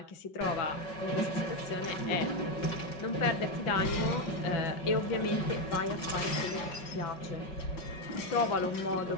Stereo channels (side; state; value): right; late; 5.4 ms